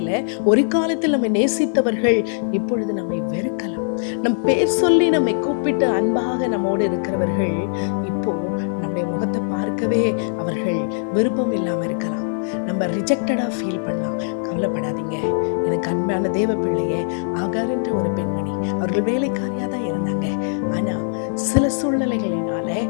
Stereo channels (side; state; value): right; silent; digital silence